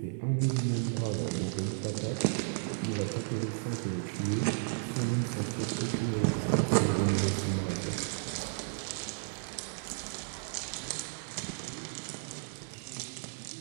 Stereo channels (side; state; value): left; silent; digital silence